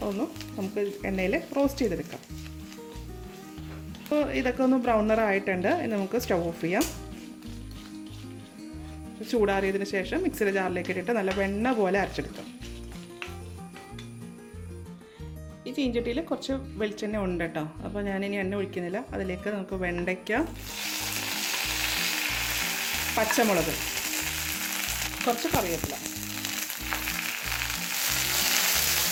ഒന്ന് നമുക്ക് എണ്ണയിൽ റോസ്റ്റ് ചെയ്തെടുക്കാം. അപ്പോൾ ഇതൊക്കെ ഒന്ന് ബ്രൗൺ നിറായിട്ടുണ്ട്. ഇനി നമുക്ക് സ്റ്റവ് ഓഫ് ചെയ്യാം. ചൂടാറിയതിന് ശേഷം മിക്സിയുടെ ജാറിലേക്ക് ഇട്ടിട്ട് നല്ല വെണ്ണ പോലെ അരച്ചെടുക്കാം. ഈ ചീഞ്ചട്ടിയിൽ കുറച്ച് വെളിച്ചെണ്ണ ഉണ്ട് കേട്ടോ. അപ്പോൾ ഞാനിനി എണ്ണ ഒഴിക്കുന്നില്ല. അതിലേക്ക് നമുക്ക് വെണ്ടയ്ക്ക, പച്ചമുളക്, കുറച്ച് കറിവേപ്പില,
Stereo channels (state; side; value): identical; both; correlation 1.00